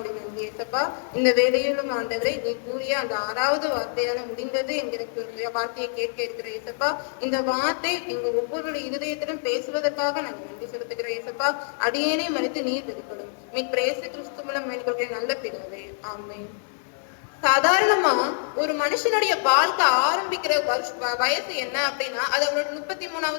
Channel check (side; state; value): right; silent; digital silence